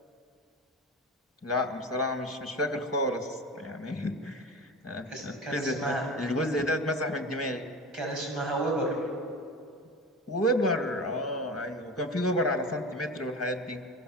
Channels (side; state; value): both; normal; correlation 0.30